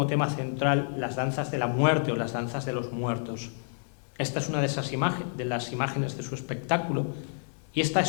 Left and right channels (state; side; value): silent; right; digital silence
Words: tema central las danzas de la muerte o las danzas de los muertos. Esta es una de las imágenes de su espectáculo, y esta